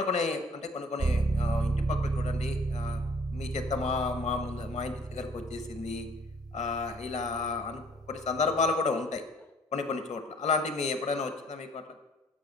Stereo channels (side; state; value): both; normal; correlation 0.58